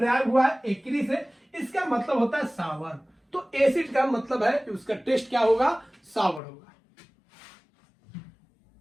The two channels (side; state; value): right; drops out; at 6.4 s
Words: हुआ है एक्री से, इसका मतलब होता है सावर। तो एसिड का मतलब है कि उसका टेस्ट क्या होगा, सावर होगा।